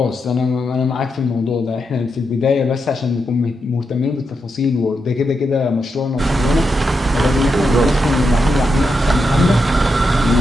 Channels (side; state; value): both; normal; correlation 0.85